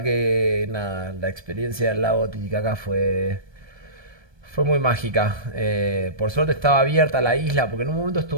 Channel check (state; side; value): late; left; 1.3 ms